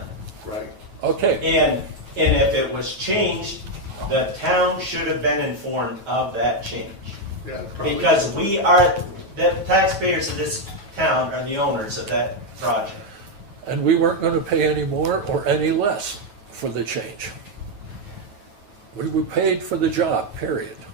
right. Okay, And if it was changed, the town should have been informed of that change. Yeah, probably. Because we are, the taxpayers of this town are the owners of that project. and we weren't gonna pay any more or any less for the change. We were paid for the job, period.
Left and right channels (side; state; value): left; late; 9.2 ms